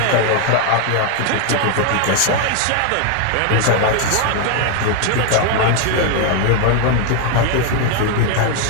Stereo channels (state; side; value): different; both; correlation 0.01